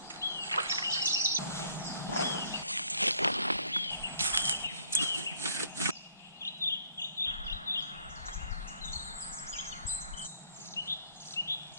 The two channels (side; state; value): both; inverted; correlation -0.63